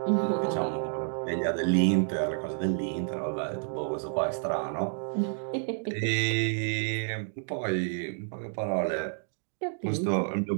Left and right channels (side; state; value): left; silent; digital silence